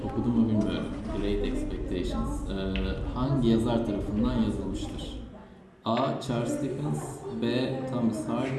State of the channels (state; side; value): identical; both; correlation 1.00